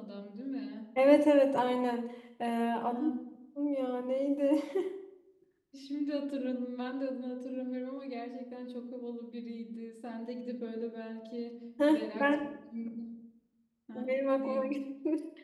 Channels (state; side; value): identical; both; correlation 1.00